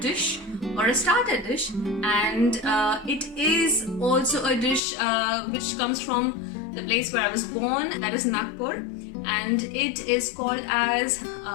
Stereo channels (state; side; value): drops out; right; at 4.8 s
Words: or a starter dish, and it is also a dish which comes from the place where I was born, that is Nagpur, and it is called as